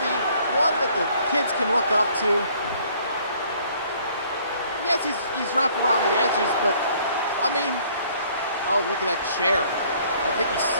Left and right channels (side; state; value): both; inverted; correlation -0.60